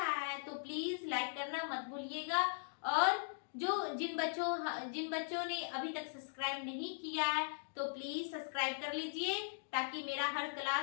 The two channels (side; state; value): right; silent; digital silence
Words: है तो प्लीज लाइक करना मत भूलिएगा। और जिन बच्चों ने अभी तक सब्सक्राइब नहीं किया है तो प्लीज सब्सक्राइब कर लीजिए, ताकि मेरा हर